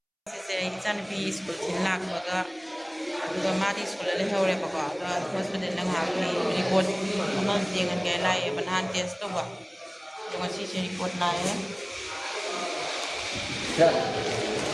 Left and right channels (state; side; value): identical; both; correlation 1.00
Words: se ichani bi school tin lakbaga aduga madi school le hore baka da hospital la ngakli report ama jengan ge lai banhan test to ba ngasi se report lai